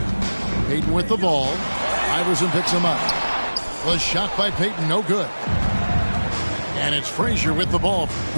Payton with the ball. Iverson picks him up. Was shot by Payton, no good. And it's Frazier with the ball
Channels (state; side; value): inverted; both; correlation -1.00